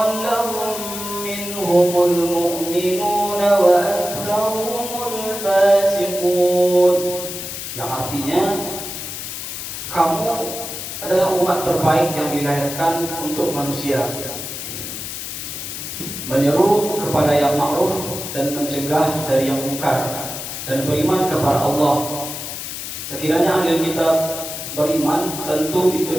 لهم منهم المؤمنون وأكثرهم الفاسقون. Yang artinya kamu adalah umat terbaik yang dilahirkan untuk manusia, menyeru kepada yang ma'ruf dan mencegah dari yang munkar, dan beriman kepada Allah. Sekiranya ahli kitab beriman, tentu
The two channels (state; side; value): noise; left; hiss, 7 dB below the sound